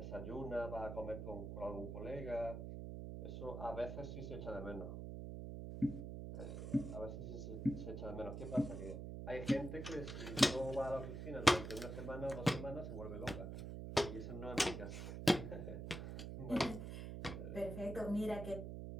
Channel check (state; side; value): noise; right; hum, 6 dB below the sound